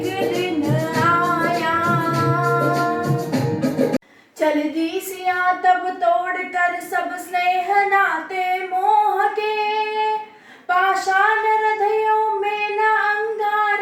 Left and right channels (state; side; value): identical; both; correlation 1.00